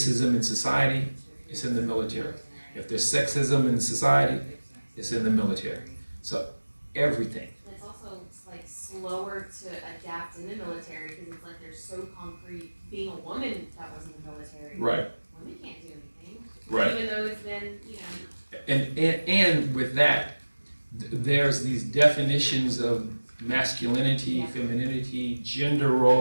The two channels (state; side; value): inverted; both; correlation -1.00